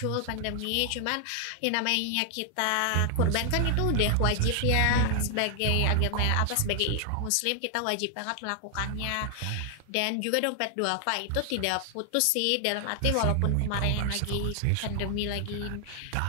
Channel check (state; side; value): different; both; correlation 0.00